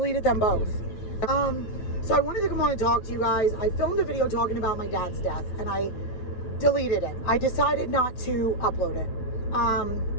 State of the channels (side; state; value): right; late; 9.0 ms